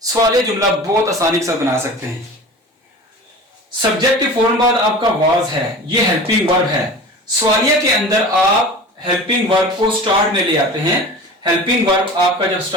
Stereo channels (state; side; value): normal; both; correlation 0.36